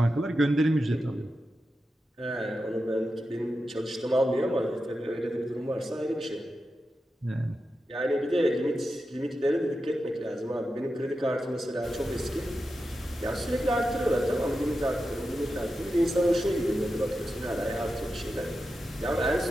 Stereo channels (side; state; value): both; normal; correlation 0.90